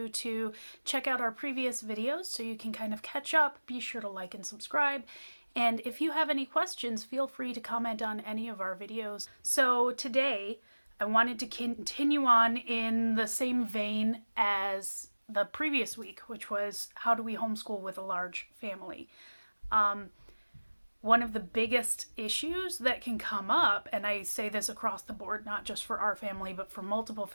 to check out our previous videos so you can kind of catch up. Be sure to like and subscribe. And if you have any questions, feel free to comment on any of our videos. So today, I wanted to continue on in the same vein as the previous week, which was how do we homeschool with a large family. One of the biggest issues that can come up, and I say this across the board, not just for our family, but for multiple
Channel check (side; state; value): both; inverted; correlation -1.00